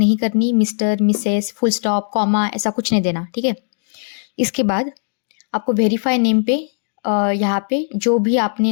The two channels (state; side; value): silent; right; digital silence